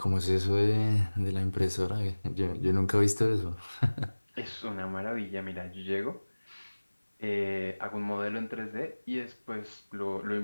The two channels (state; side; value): inverted; both; correlation -1.00